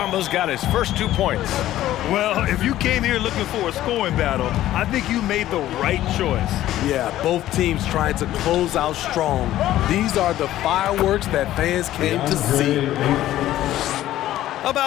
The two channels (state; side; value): quieter; right; 13.8 dB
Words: got his first 2 points. Well, if you came here looking for a scoring battle, I think you made the right choice. Yeah, both teams trying to close out strong. These are the fireworks that fans came to see.